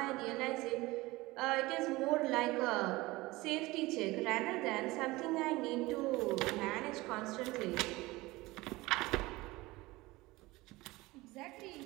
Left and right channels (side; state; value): left; quieter; 20.6 dB